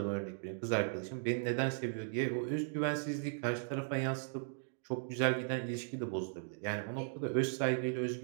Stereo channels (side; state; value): left; silent; digital silence